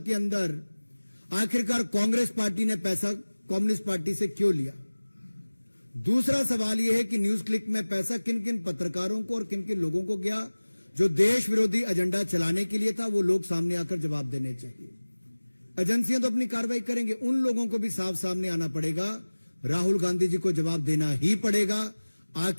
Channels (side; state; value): both; inverted; correlation -1.00